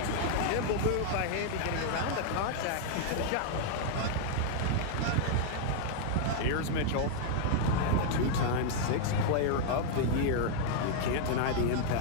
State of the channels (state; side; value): different; both; correlation -0.01